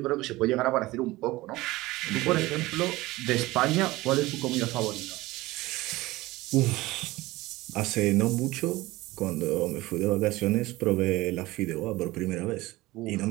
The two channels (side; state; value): left; quieter; 19.3 dB